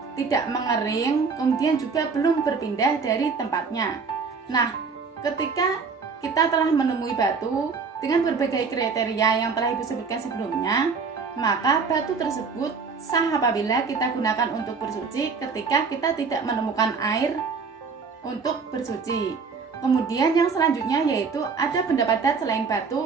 tidak mengering, kemudian juga belum berpindah dari tempatnya. Nah, ketika kita telah menemui batu dengan berbagai kriteria yang telah Ibu sebutkan sebelumnya, maka batu tersebut sah apabila kita gunakan untuk bersuci ketika kita tidak menemukan air untuk bersuci. Kemudian yang selanjutnya yaitu ada benda padat selain batu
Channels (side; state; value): left; quieter; 5.1 dB